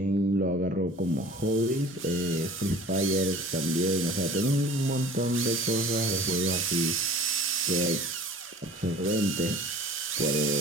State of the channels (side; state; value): both; normal; correlation 0.44